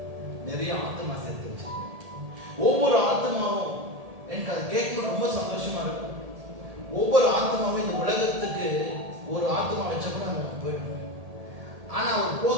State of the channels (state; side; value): late; left; 1.8 ms